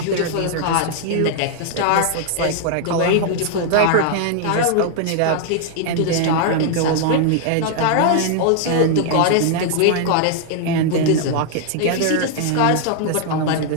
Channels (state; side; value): different; both; correlation -0.01